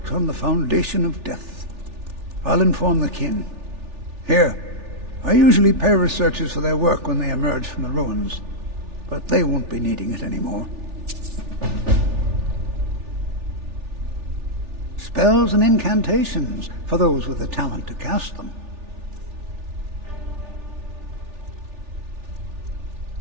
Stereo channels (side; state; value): left; late; 3.4 ms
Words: on the foundation of death. I'll inform the kin. Here, I usually pay researchers for their work when they emerge from the ruins, but they won't be needing it anymore. Spells and incantations for those with the talent to cast them.